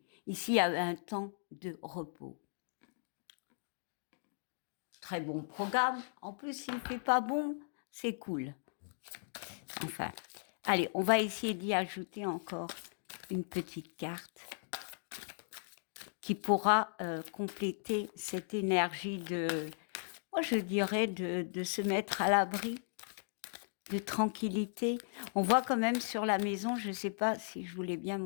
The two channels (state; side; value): silent; right; digital silence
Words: Ici, il y a un temps de repos. Très bon programme. En plus, s'il ne fait pas bon, c'est cool. Enfin, allez, on va essayer d'y ajouter encore une petite carte qui pourra compléter cette énergie moi je dirais, de se mettre à l'abri, de tranquillité. On voit quand même sur la maison, je ne sais pas si je vous l'ai bien